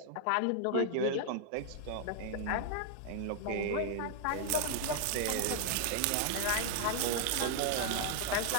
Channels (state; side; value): different; both; correlation 0.00